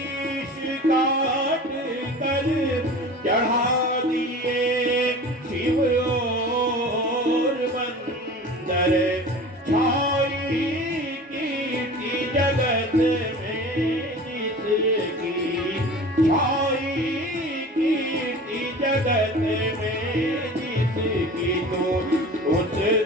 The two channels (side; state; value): both; normal; correlation 0.38